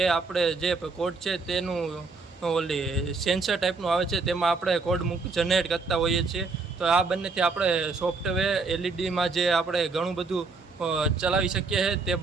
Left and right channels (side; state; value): left; quieter; 4.1 dB